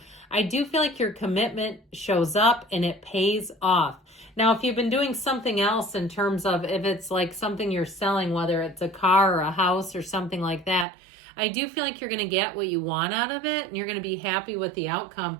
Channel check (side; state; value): left; drops out; at 10.9 s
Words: I do feel like your commitment shows up and it pays off. Now, if you've been doing something else in terms of if it's like something you're selling, whether it's a car or a house or something like that, I do feel like you're going to get what you want out of it and you're going to be happy with the